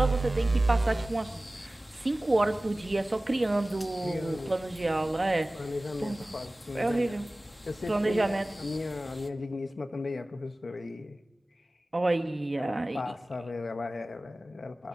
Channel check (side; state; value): both; normal; correlation 0.97